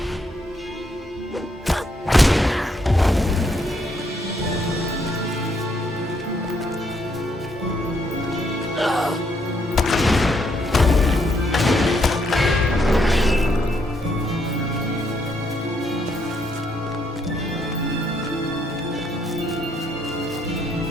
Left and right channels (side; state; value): both; normal; correlation 0.74